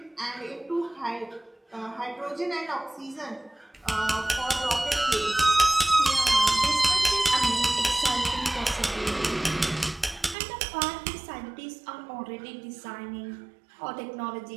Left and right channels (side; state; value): left; drops out; at 10.4 s